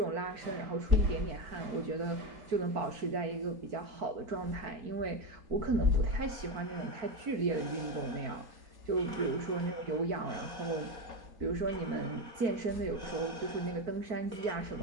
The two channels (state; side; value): late; left; 4.5 ms